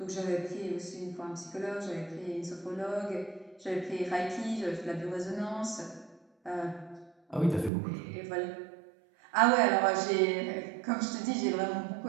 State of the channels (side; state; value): left; drops out; at 7.7 s